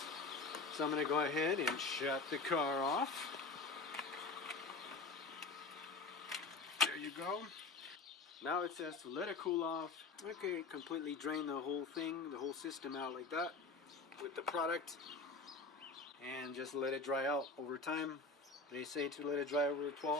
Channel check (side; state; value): right; quieter; 3.9 dB